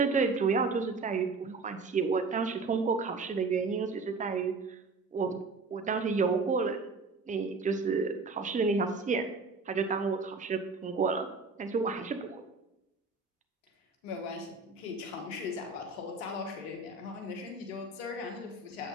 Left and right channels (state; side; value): quieter; left; 3.9 dB